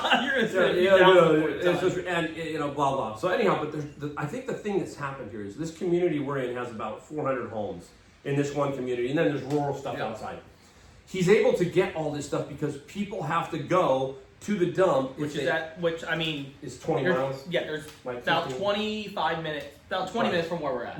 You're gonna it's just, and blah blah. So anyhow, but I think the thing that's happened here is this community we're in has about 400 homes in this one community, and then there's rural stuff outside. He's able to get all this stuff because people have to go to the dump, which is 20 miles. Yeah, there's about 25 minutes, about 20 minutes from where we're at.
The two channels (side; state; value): both; identical; correlation 1.00